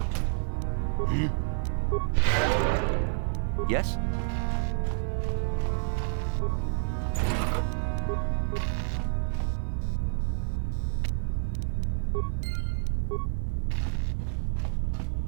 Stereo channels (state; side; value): silent; left; digital silence